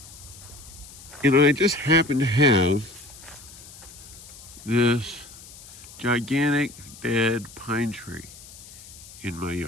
and I just happened to have this gigantic dead pine tree in my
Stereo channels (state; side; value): noise; left; hiss, 18 dB below the sound